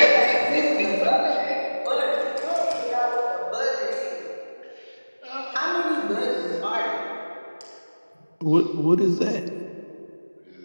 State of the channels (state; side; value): inverted; both; correlation -1.00